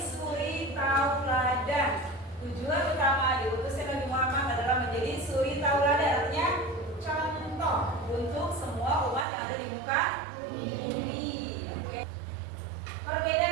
suri tauladan. Tujuan utama diutusnya Nabi Muhammad adalah menjadi suri tauladan, artinya contoh untuk semua umat yang ada di muka bumi. Oke.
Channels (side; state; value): left; drops out; at 9.2 s